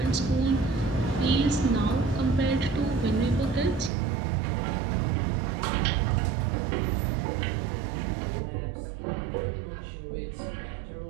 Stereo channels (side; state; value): left; drops out; at 3.9 s